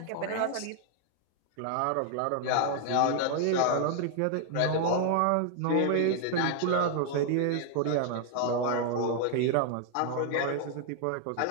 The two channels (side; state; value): both; different; correlation 0.00